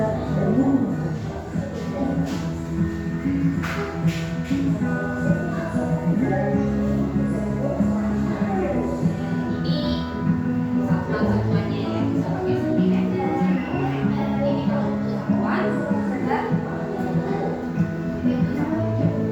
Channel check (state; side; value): identical; both; correlation 1.00